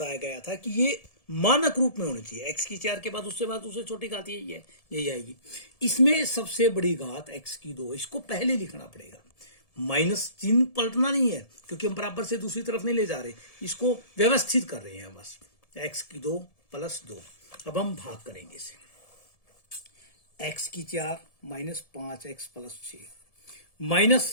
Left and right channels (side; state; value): right; late; 1.7 ms